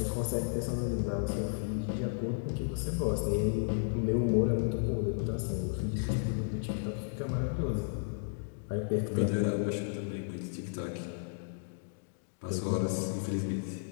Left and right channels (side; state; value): right; silent; digital silence